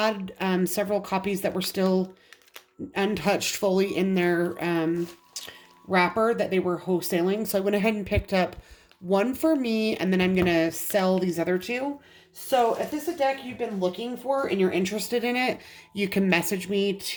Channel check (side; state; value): both; identical; correlation 1.00